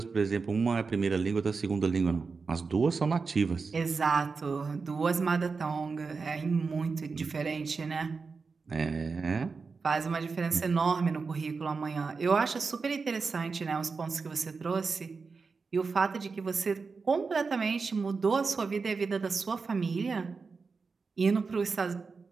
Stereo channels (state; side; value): quieter; left; 4.7 dB